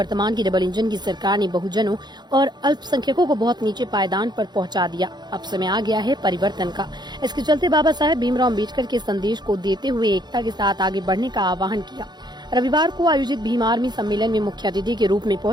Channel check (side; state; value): left; late; 0.21 ms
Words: की डबल इंजन की सरकार ने बहुजनों और अल्पसंख्यकों को बहुत नीचे पायदान पर पहुंचा दिया। अब समय आ गया है परिवर्तन का। इसके चलते बाबा साहेब भीमराव अम्बेडकर के संदेश को देते हुए एकता के साथ आगे बढ़ने का आह्वान किया। रविवार को आयोजित भीम आर्मी सम्मेलन में मुख्य अतिथि के रूप में